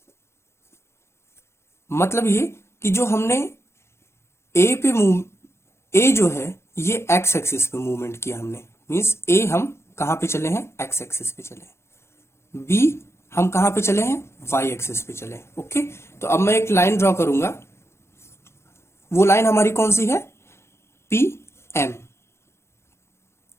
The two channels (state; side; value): late; right; 0.13 ms